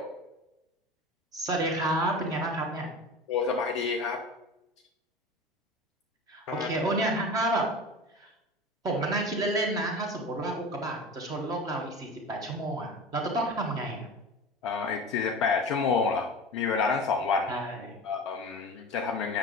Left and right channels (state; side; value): normal; both; correlation 0.33